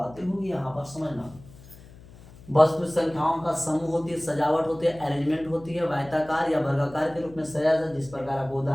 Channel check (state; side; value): noise; left; hum, 21 dB below the sound